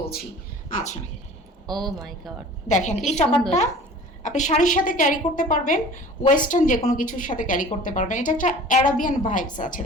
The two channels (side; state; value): both; normal; correlation 0.44